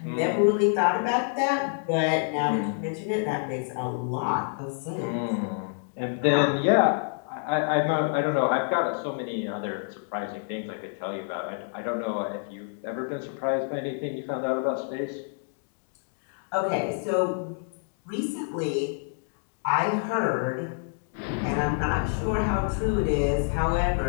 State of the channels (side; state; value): right; silent; digital silence